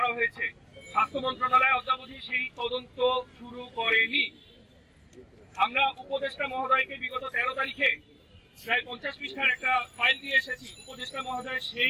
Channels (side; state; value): both; identical; correlation 1.00